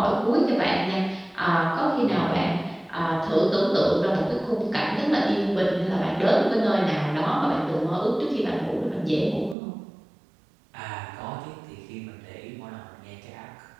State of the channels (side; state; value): left; drops out; at 9.6 s